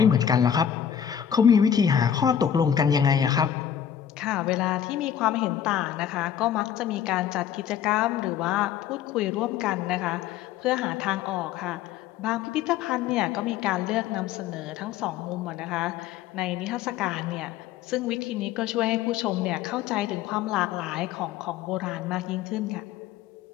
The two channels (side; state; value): right; quieter; 9.3 dB